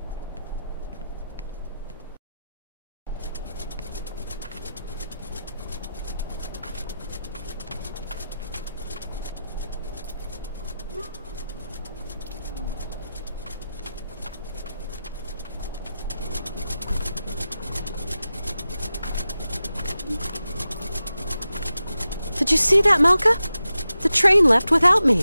Did you see that, Malka? The train left without me.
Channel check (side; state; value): both; inverted; correlation -0.91